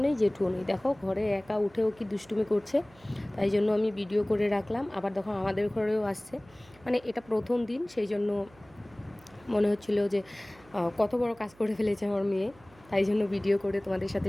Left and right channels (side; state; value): right; noise; hum, 27 dB below the sound